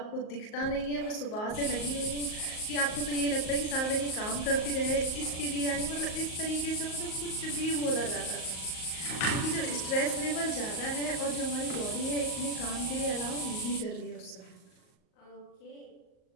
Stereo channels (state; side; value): late; right; 38 ms